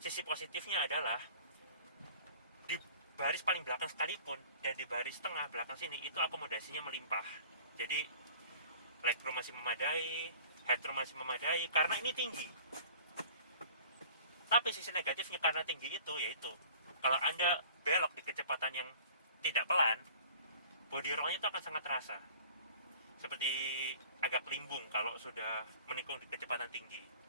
positifnya adalah di baris paling belakang sekalipun dan di baris tengah belakang sini itu akomodasinya melimpah. Jadi legroom masih memadai, headroom masih memadai karena ini tinggi. Tapi sisi negatifnya karena tinggi itu yaitu kalau Anda belok di kecepatan yang tidak pelan, body roll-nya itu akan sangat terasa. Seperti agak limbung kalau sudah menikung di kecepatan tinggi.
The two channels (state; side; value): inverted; both; correlation -0.47